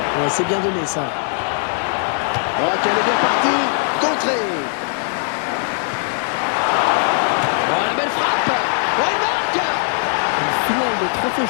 Ouais, c'est bien donné ça. Oh, qu'elle est bien partie. Contrée. Oh, la belle frappe. Oh, il marque. Une finale de trophée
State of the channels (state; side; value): silent; right; 58 dB below the other